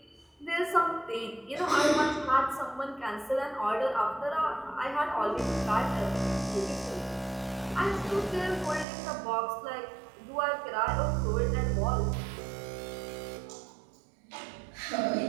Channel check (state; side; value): drops out; left; at 8.8 s